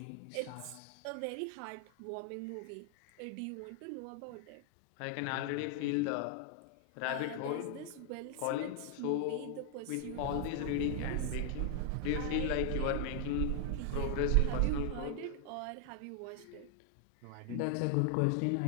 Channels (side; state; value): both; different; correlation 0.00